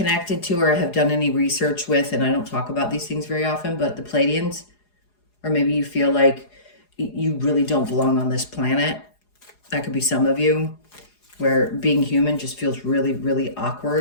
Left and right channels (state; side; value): late; right; 4.8 ms